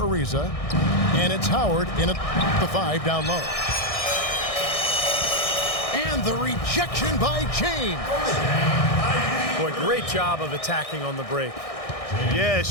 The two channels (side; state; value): right; late; 1.6 ms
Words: and it's Howard in at the 5 down low. And the rejection by James. Boy, great job of attacking on the break. Yeah, it